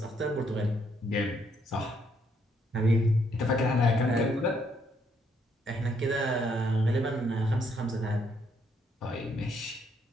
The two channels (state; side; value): normal; both; correlation 0.72